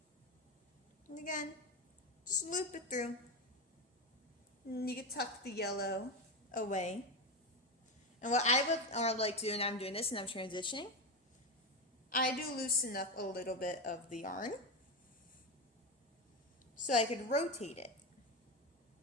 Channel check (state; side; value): normal; both; correlation 0.15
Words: And again, just loop it through. And you can tuck the yellow away. And what I would like to do, and I'm doing this and I'm transitioning, I do loosen up a little bit of the yarn so I could rotate it.